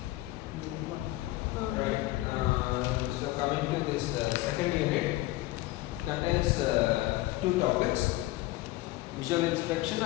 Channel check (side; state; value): right; quieter; 18.2 dB